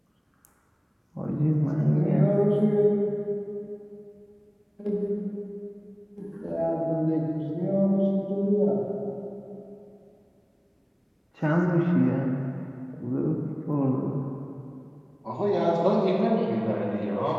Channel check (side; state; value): both; identical; correlation 1.00